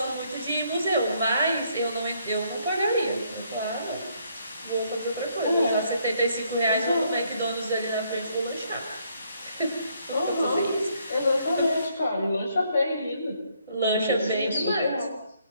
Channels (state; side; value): inverted; both; correlation -0.70